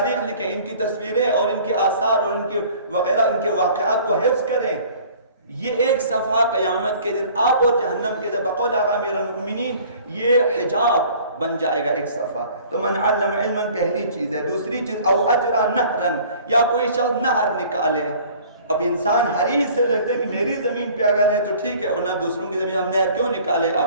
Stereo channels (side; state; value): both; inverted; correlation -0.51